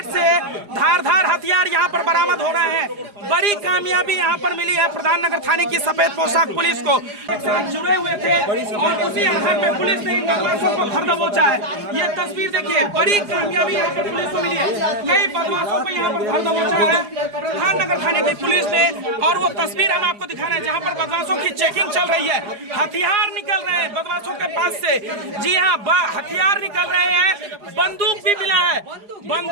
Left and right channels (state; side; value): late; left; 4.8 ms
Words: से धार हथियार यहाँ पर बरामद हो रहे हैं। बड़ी कामयाबी यहाँ पर मिली है प्रधाननगर थाने की सफेद पोशाक पुलिस को। जुड़े हुए थे और उसी आधार पे पुलिस ने इन बदमाशों को धर दबोचा है। ये तस्वीर देखिए, बड़ी कामयाबी यहाँ पर पुलिस को मिली है। कई बदमाशों को यहाँ पर धर दबोचा है प्रधाननगर थाने की पुलिस ने। और वो तस्वीर हम आपको दिखाना है जहाँ पर बदमाशों की चेकिंग चल रही है। हथियार निकल रहे हैं बदमाशों के पास से। जी हाँ, हथियार निकल रहे हैं। बंदूक भी मिला है,